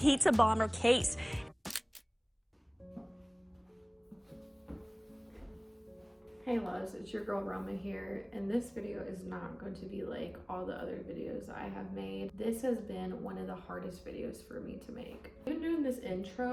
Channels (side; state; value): both; identical; correlation 1.00